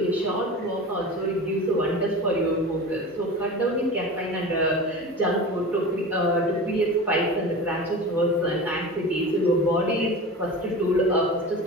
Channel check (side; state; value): both; normal; correlation 0.32